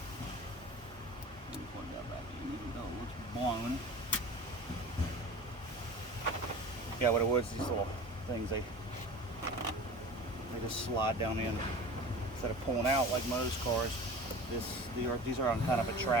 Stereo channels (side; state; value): both; normal; correlation 0.37